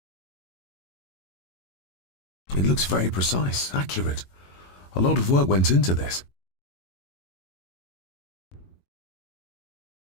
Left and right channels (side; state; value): right; late; 22 ms